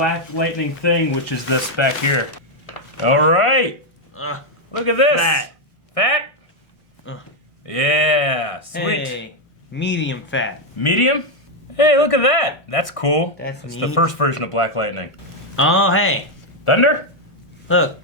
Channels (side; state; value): right; late; 1.1 ms